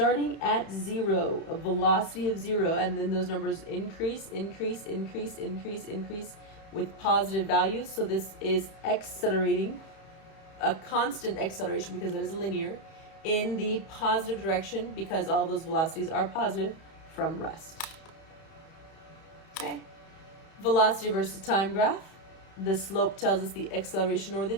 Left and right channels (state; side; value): late; right; 31 ms